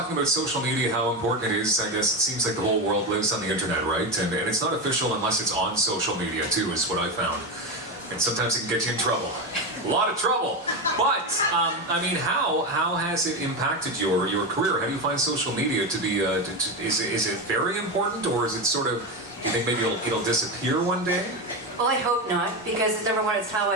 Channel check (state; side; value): normal; both; correlation 0.15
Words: about social media, how important it is. I guess it seems like the whole world lives on the internet, right? And it's not official unless it's on social media, too, is what I found. And sometimes it can get you in trouble. A lot of trouble. But, how has it impacted your career? How do you find social media to be, is it very important, or is it sort of, do you think maybe it'll disappear one day? Well, I hope not, because number one, it's how